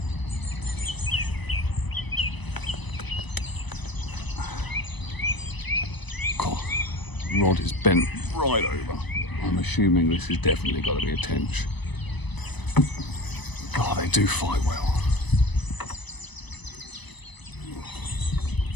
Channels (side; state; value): right; late; 1.0 ms